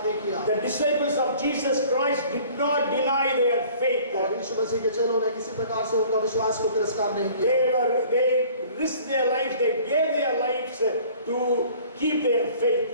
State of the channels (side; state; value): both; inverted; correlation -0.50